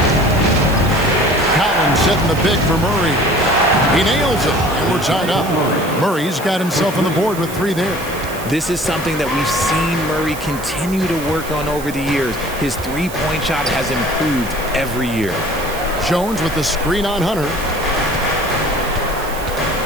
Collins setting the pick for Murray. He nails it, and we're tied up. Murray's got himself on the board with 3 there. This is something that we've seen Murray continue to work on over the years. His three-point shot has improved every year. Jones with the screen on Hunter.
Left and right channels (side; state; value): right; noise; hiss, 14 dB below the sound